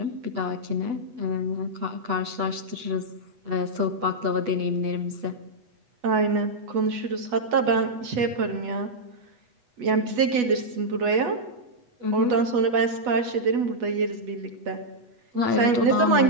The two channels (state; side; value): late; left; 8.1 ms